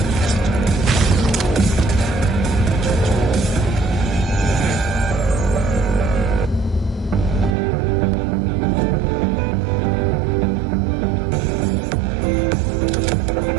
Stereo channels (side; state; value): left; drops out; at 7.6 s